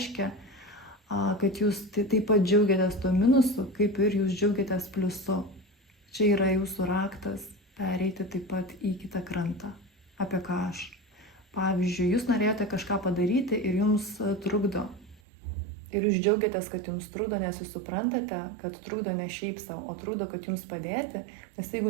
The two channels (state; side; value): drops out; left; at 15.2 s